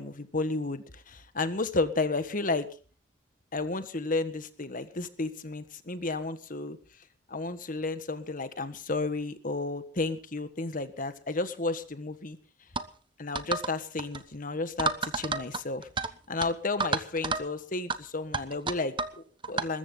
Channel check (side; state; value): both; normal; correlation 0.11